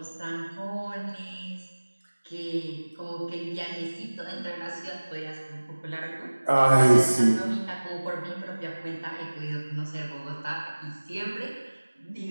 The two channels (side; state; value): both; inverted; correlation -1.00